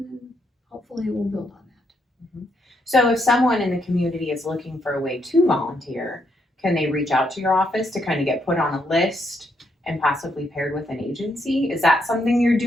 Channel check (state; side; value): normal; both; correlation 0.77